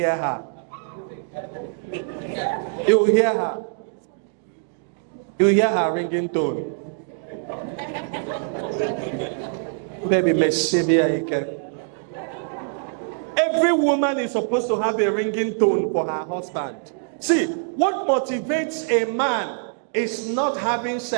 her. You will hear her. You will hear her ringing tone. Baby, every woman is supposed to have a ringing tone for her husband. See, what motivates a man is not having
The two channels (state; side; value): silent; left; digital silence